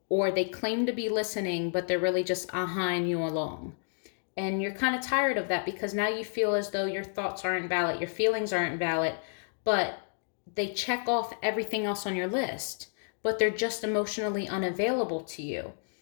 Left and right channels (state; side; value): silent; right; digital silence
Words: Or they claim to be listening, but they're really just ahhing you along. And you're kind of tired of that because now you feel as though your thoughts aren't valid, your feelings aren't valid, but they check off everything else on your list, but they're just emotionally unavailable to you.